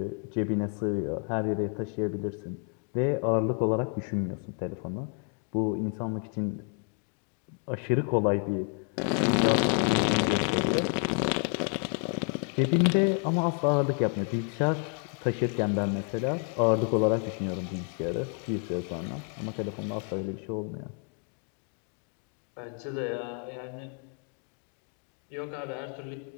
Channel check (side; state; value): right; quieter; 39.4 dB